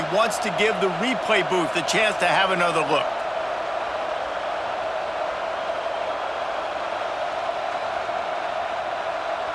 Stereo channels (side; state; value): both; identical; correlation 1.00